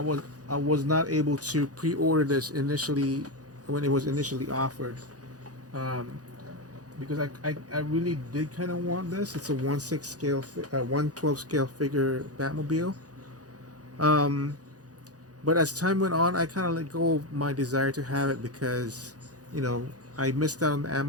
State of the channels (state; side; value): late; left; 0.68 ms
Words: not able to pre-order this initially when it was initially offered, because I really did kind of want this. It's a 1/6 scale, 1/12 scale figure Batmobile. But as time went on, I kind of let go of my desire to have it because, I missed out on the